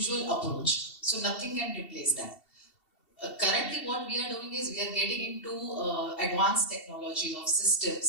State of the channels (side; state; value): right; late; 2.7 ms